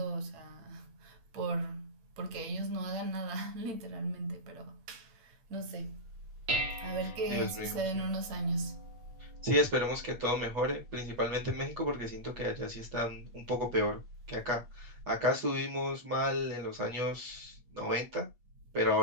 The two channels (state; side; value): late; left; 8.5 ms